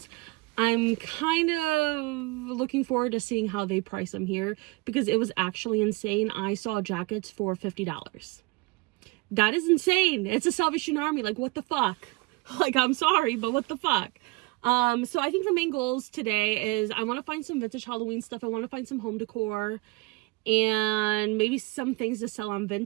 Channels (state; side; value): quieter; left; 24.2 dB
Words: I'm kind of looking forward to seeing how they price them here, because it was actually insane. I saw jackets for $50. That is insane. It's a Salvation Army. Like, what the fuck? Like, I'm sorry, but what the fuck? So I think the main goals today is I want to find some vintage Halloween stuff. I want to find some home decor and maybe some things to sell on